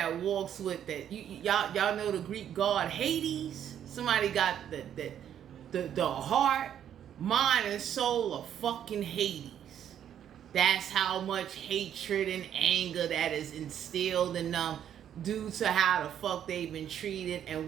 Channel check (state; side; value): quieter; left; 9.8 dB